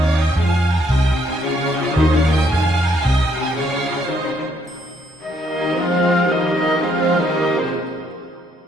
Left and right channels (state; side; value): normal; both; correlation 0.70